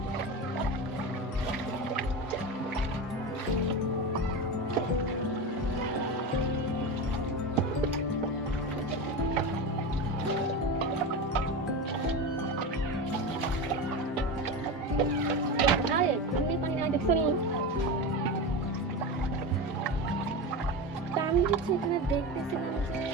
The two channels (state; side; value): normal; both; correlation 0.22